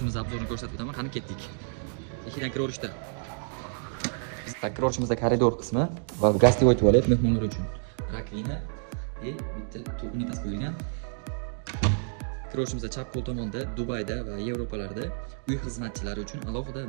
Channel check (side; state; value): left; silent; 59 dB below the other